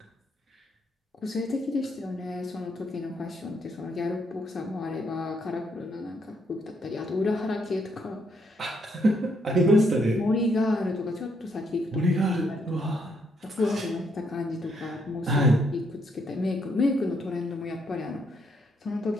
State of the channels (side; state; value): both; normal; correlation 0.74